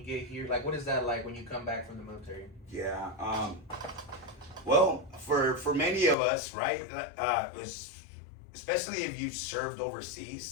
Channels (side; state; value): right; drops out; at 6.2 s